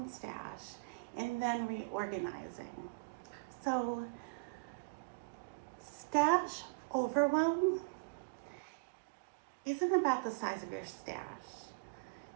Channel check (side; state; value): left; quieter; 32.4 dB